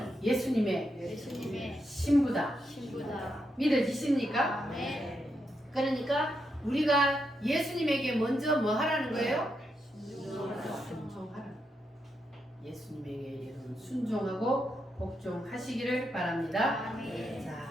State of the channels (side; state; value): both; normal; correlation 0.82